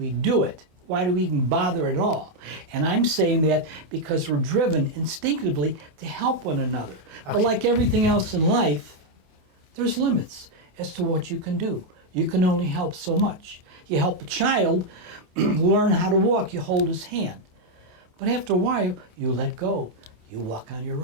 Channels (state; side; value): late; left; 28 ms